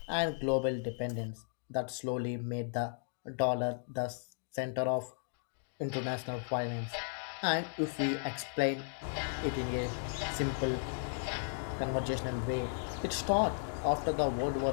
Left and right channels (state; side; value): silent; right; digital silence